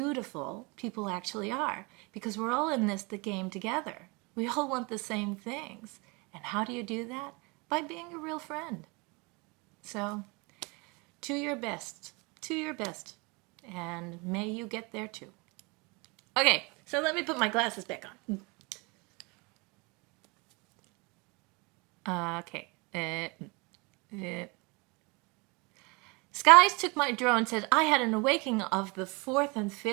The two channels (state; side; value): quieter; left; 28.5 dB